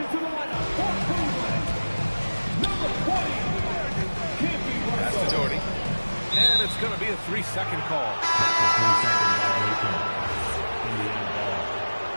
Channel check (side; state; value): both; inverted; correlation -1.00